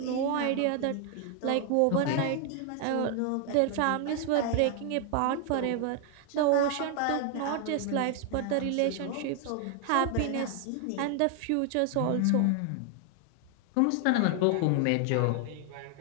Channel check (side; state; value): both; different; correlation 0.00